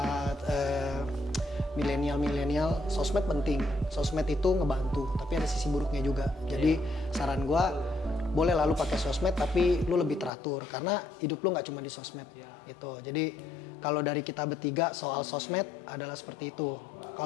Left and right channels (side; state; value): right; drops out; at 10.3 s